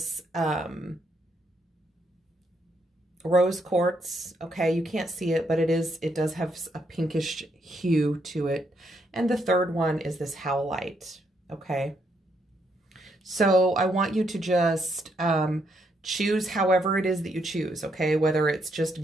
rose quartz, okay? You can't see it, but it does have a pinkish hue to it. And the third one is this Howlite, okay? So I want you to just choose however it is that you choose, okay? Whether it's just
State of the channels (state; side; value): normal; both; correlation 0.76